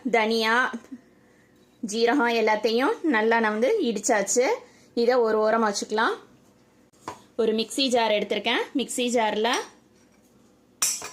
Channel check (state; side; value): identical; both; correlation 1.00